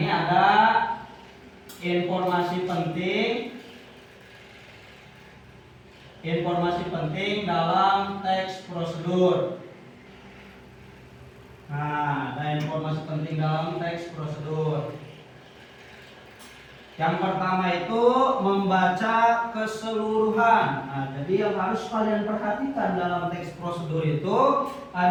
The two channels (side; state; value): both; identical; correlation 1.00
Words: ada informasi penting. Informasi penting dalam teks prosedur. Nah, ada informasi penting dalam teks prosedur. Yang pertama itu membaca keseluruhan. Nah, jadi yang harus kalian perhatikan dalam teks prosedur itu